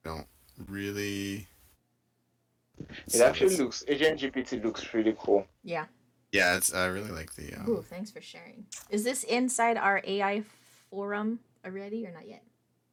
don't really It actually looks. Agent GPT looks really cool. Yeah. yeah, it's I really like the Ooh, thanks for sharing. Is this inside our AI forum already or not yet?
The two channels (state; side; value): identical; both; correlation 1.00